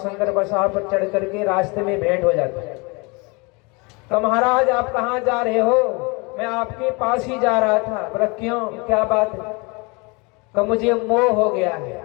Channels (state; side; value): quieter; right; 28.6 dB